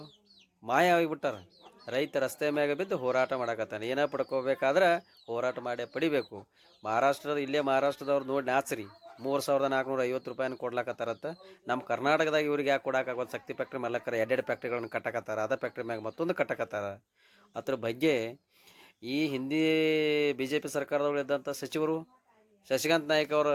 ಮಾಯ ಆಗಿಬಿಟ್ಟಾರ. ರೈತ ರಸ್ತೆ ಮ್ಯಾಗ ಬಿದ್ದು ಹೋರಾಟ ಮಾಡಕತ್ತಾನೆ. ಏನೋ ಪಡ್ಕೋಬೇಕಾದ್ರೆ ಹೋರಾಟ ಮಾಡೇ ಪಡಿಬೇಕು. ಇಲ್ಲೇ ಮಹಾರಾಷ್ಟ್ರದವ್ರು ನೋಡಿ ನಾಚ್ರಿ, 3,450 ರೂಪಾಯಿನ ಕೊಡ್ಲಾಕತ್ತಾರತ್ತ. ನಮ್ಮ ಕರ್ನಾಟಕದಾಗ ಇವ್ರಿಗೆ ಯಾಕೆ ಕೊಡೋಕ್ಕಾಗೋದು? ಶಕ್ತಿ ಫ್ಯಾಕ್ಟ್ರಿ ಮಾಲಕರ 2 ಫ್ಯಾಕ್ಟ್ರಿಗಳನ್ನ ಕಟ್ಟಕತ್ತಾರ, ಅದ ಫ್ಯಾಕ್ಟ್ರಿ ಮ್ಯಾಗ ಮತ್ತೊಂದು ಕಟ್ಟಕತ್ತಾರ. ಅದ್ರ ಬಗ್ಗೆ ಈ ಹಿಂದಿ BJP ಸರ್ಕಾರದವರು ಇದ್ದಂಥ ಸಚಿವರು ಶಶಿಕಾಂತ್ ನಾಯ್ಕ ಅವರು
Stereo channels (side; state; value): both; identical; correlation 1.00